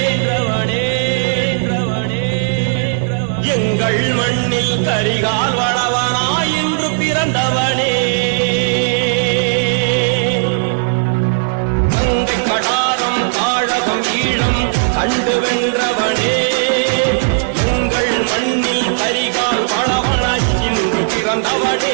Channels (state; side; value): silent; left; digital silence